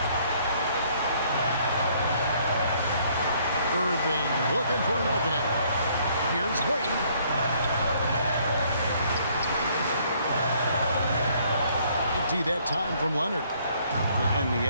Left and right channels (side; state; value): both; inverted; correlation -0.64